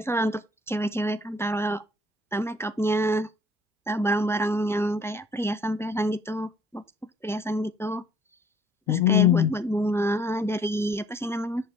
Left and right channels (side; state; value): both; normal; correlation 0.59